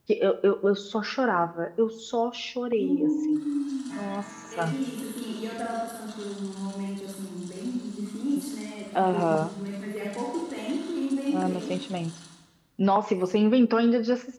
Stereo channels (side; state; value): both; identical; correlation 1.00